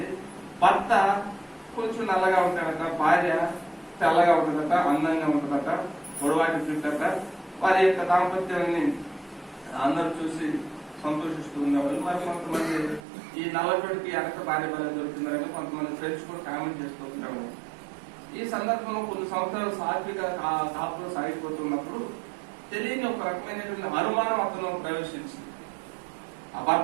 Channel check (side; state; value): left; drops out; at 13.0 s